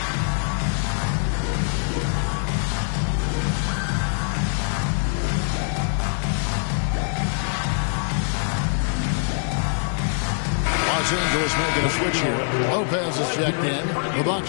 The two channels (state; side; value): silent; right; 63 dB below the other